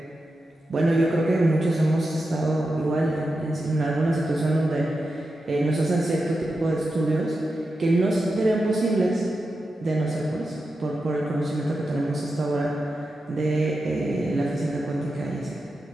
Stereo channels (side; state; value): both; normal; correlation 0.90